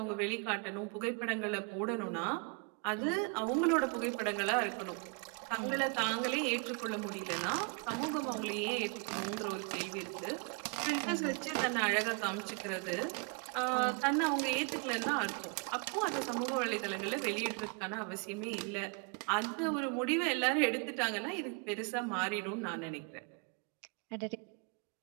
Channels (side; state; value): left; quieter; 33.2 dB